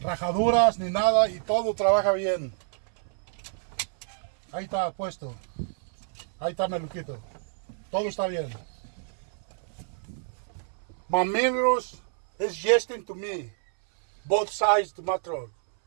ni nada y todo trabaja bien. Ahí está puesto. Ahí está Meluquito. Todo está bien. My mirrors is gesting to me. Both sides to my truck.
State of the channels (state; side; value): silent; left; 59 dB below the other